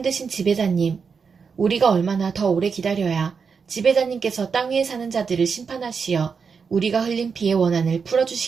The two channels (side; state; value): left; quieter; 5.7 dB